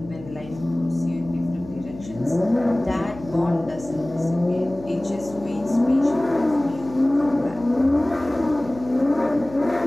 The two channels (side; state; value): left; noise; hum, 16 dB below the sound